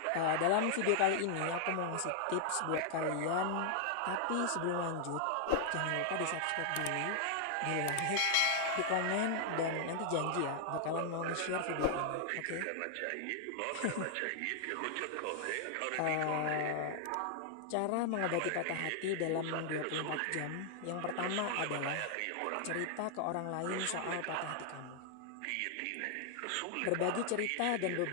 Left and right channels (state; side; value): different; both; correlation 0.00